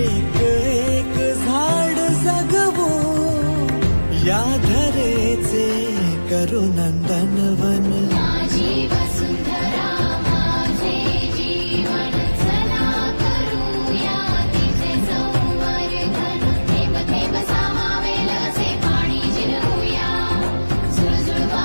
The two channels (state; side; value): inverted; both; correlation -1.00